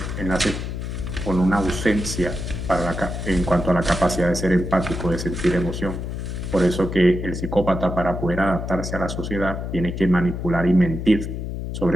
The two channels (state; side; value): noise; left; hum, 5 dB below the sound